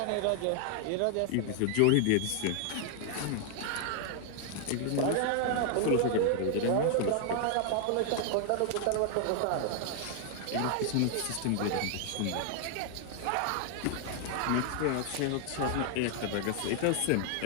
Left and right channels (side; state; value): both; different; correlation 0.00